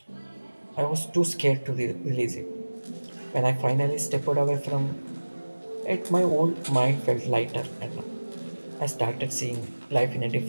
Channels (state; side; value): inverted; both; correlation -1.00